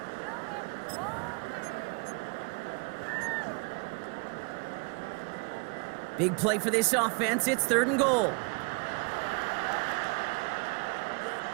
Big play for this offense. It's 3rd and goal.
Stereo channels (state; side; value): quieter; left; 33.2 dB